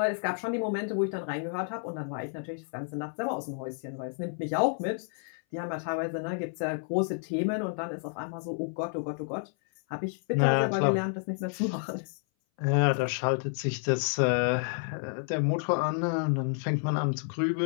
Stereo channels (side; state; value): right; silent; 58 dB below the other